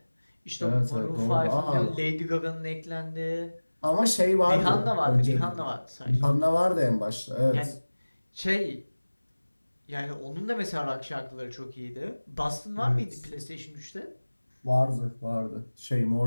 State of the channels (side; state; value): both; inverted; correlation -1.00